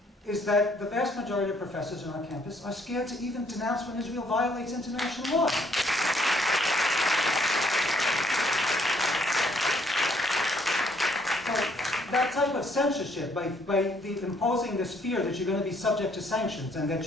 is that the vast majority of professors on our campus are scared to even denounce when Israel violates international law. That type of censorship, by imposing this fear that you're going to be subject to sanctions and that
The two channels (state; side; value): normal; both; correlation 0.67